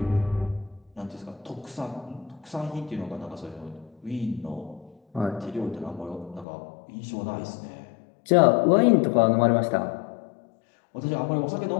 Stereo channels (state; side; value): drops out; right; at 6.5 s